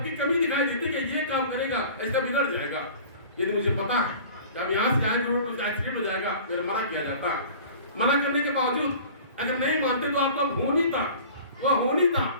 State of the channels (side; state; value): both; inverted; correlation -0.43